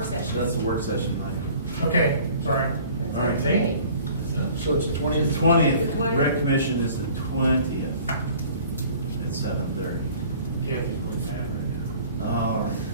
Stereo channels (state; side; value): inverted; both; correlation -0.50